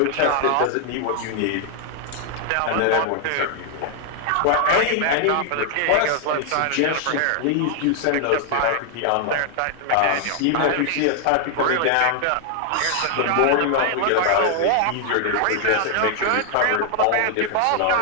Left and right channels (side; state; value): both; different; correlation 0.00